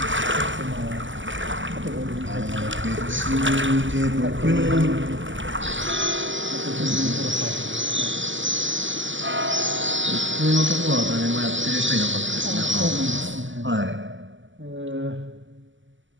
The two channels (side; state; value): left; late; 0.55 ms